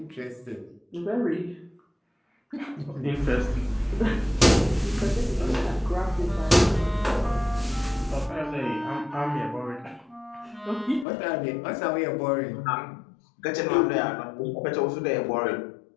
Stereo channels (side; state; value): right; drops out; at 11.1 s